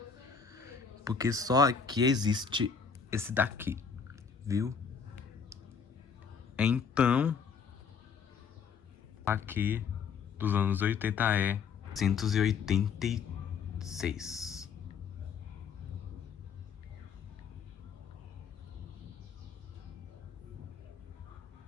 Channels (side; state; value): right; quieter; 6.1 dB